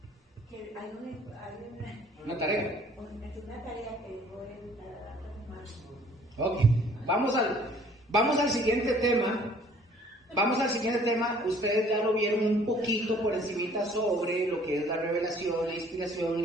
Que hay una tarea. Una tarea que dejó en la semana. Ok, vamos al siguiente tema. Vamos al siguiente tema. Ustedes ya lo vieron un poquito por encimita sobre lo que es la revelación, la inspiración,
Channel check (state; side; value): normal; both; correlation 0.56